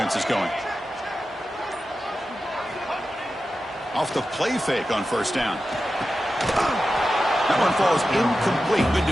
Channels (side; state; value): both; normal; correlation 0.92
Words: is going. Off the play fake on 1st down. That one falls incomplete. Good